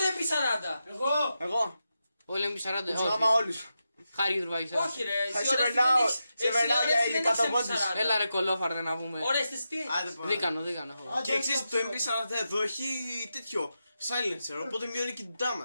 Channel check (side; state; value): both; inverted; correlation -0.89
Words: τρέπει 40? Εγώ. Εγώ, Όλοι είναι 40. τους γάμα όλους. Χάρη Τρουβάκης. Όχι ρε, εσύ Σε ωραίες περνάω, δεν σε περνάω για έχεις ηλικατοβόντους. MP40. Έλα ρε κολόφαρδε να πούμε. Ωραίες τι. Άντε πάμε. Δίκανο. Και εξής το MP40 εδώ έχει τέτοιο silencer, οπότε μειώνει και την